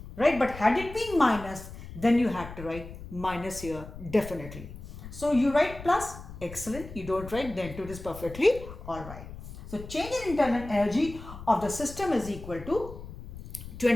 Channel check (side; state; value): left; noise; rumble, 13 dB below the sound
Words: Right? But had it been minus, then you had to write minus here definitely. So you write plus, excellent. You don't write, then it is perfectly alright. So change in internal energy of the system is equal to